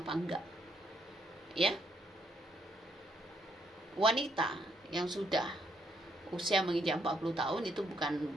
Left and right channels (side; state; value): both; normal; correlation 0.74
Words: enggak? Ya. Wanita yang sudah usia menginjak 40 tahun itu